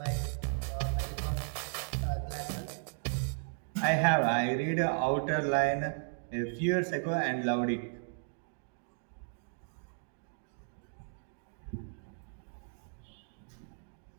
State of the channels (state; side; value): silent; left; digital silence